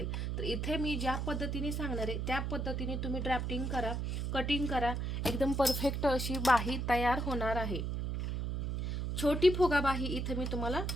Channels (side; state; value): right; noise; hum, 1 dB below the sound